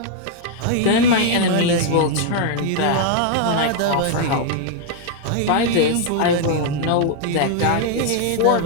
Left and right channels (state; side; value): different; both; correlation 0.00